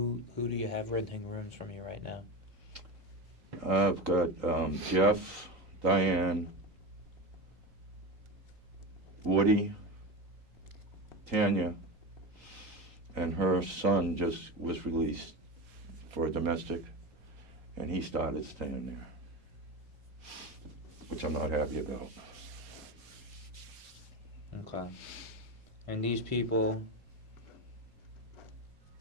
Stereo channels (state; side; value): late; left; 3.9 ms